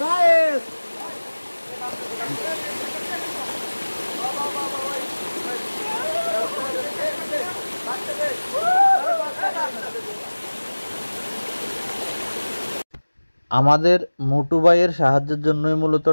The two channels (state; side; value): inverted; both; correlation -1.00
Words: গাইস, আমাদের মোটু ভাইয়ের সাহায্যের জন্যই মূলত